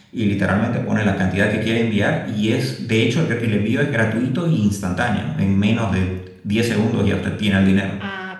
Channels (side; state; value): both; identical; correlation 1.00